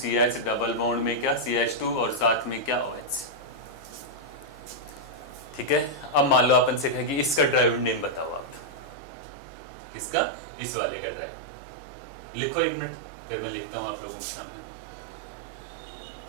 डबल बॉन्ड में क्या, CH2 और साथ में क्या, OH, ठीक है। अब मान लो अपन से कहे कि इसका ड्राइविंग नेम बताओ आप, किसका, इस वाले का ड्राइविंग। लिखो 1 मिनट, फिर मैं लिखता हूं आप लोगों के सामने।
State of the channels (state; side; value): drops out; left; at 9.0 s